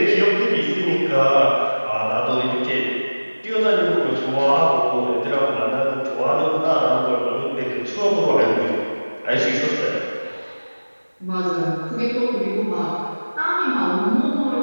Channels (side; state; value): both; inverted; correlation -1.00